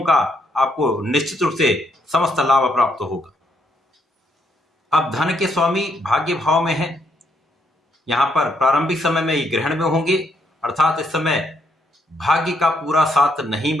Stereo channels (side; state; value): both; normal; correlation 0.74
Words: का आपको निश्चित रूप से समस्त लाभ प्राप्त होगा। अब धन के स्वामी भाग्य भाव में है। यहां पर प्रारंभिक समय में ये ग्रहण में होंगे, अर्थात इस समय भाग्य का पूरा साथ नहीं